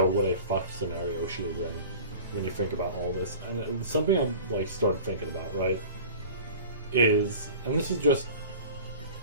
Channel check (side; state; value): both; inverted; correlation -0.39